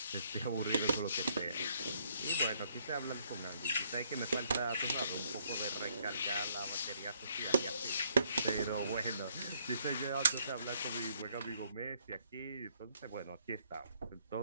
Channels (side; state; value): both; inverted; correlation -0.69